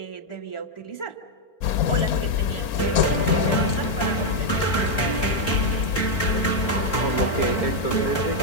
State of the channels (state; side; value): late; right; 4.4 ms